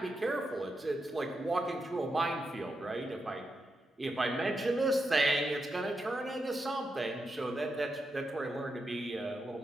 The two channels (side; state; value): both; normal; correlation 0.86